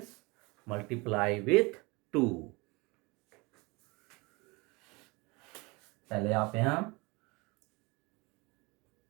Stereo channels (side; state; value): left; quieter; 26.0 dB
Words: multiply with 2। पहले आप यहां